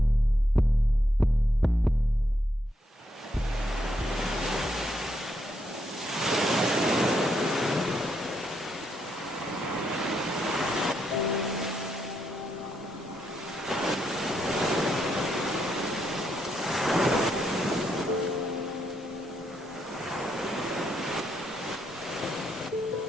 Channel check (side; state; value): both; normal; correlation 0.78